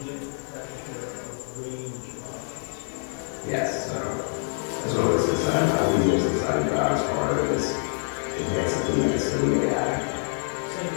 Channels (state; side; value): silent; right; digital silence